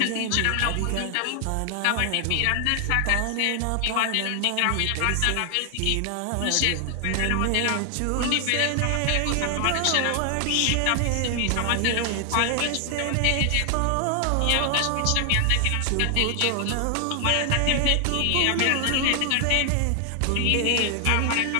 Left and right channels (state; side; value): different; both; correlation 0.00